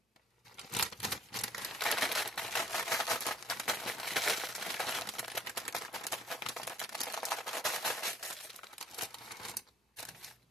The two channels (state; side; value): normal; both; correlation 0.62